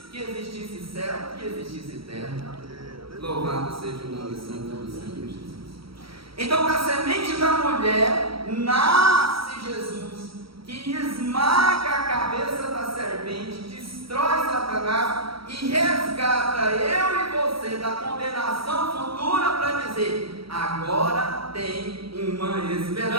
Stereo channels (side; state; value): left; late; 0.75 ms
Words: que existisse céu, que existisse terra. Louvado seja o nome santo do Senhor Jesus. Então, da semente da mulher nasce Jesus, que esmaga a cabeça da serpente, destrói Satanás e resgata eu e você da condenação futura, para dizer: agora tem uma